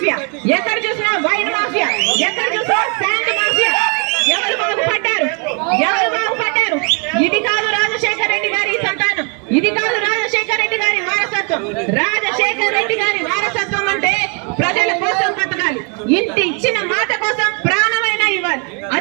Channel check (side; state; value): left; quieter; 37.1 dB